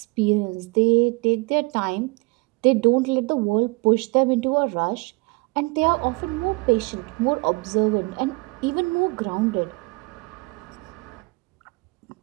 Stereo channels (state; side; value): quieter; left; 27.1 dB